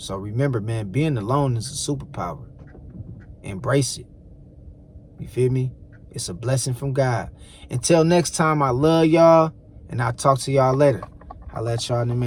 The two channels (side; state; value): both; identical; correlation 1.00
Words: remember, man, being alone is a superpower. Embrace it. You feel me? It's a blessing from God. Until next time, I love y'all, and I'll talk to y'all later. I'll let y'all in a